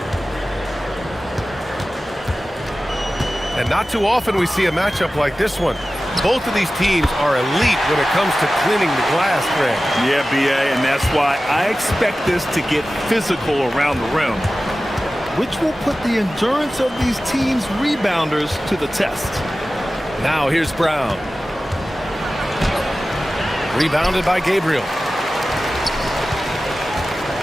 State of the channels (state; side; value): normal; both; correlation 0.95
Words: And not too often we see a matchup like this one. Both of these teams are elite when it comes to cleaning the glass, Grant. Yeah, B.A., and that's why I expect this to get physical around the rim, which will put the endurance of these teams' rebounders to the test. Now here's Brown. Rebounded by Gabriel.